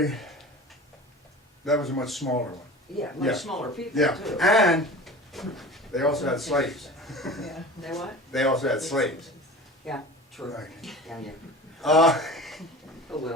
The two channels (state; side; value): normal; both; correlation 0.37